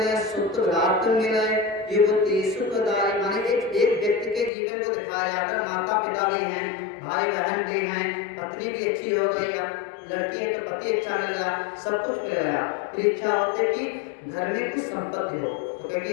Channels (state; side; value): drops out; right; at 4.5 s